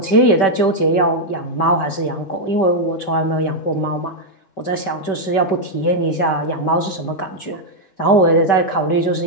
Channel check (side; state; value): right; late; 5.2 ms